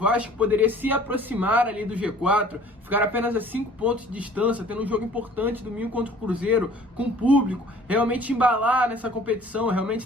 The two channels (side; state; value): both; normal; correlation 0.51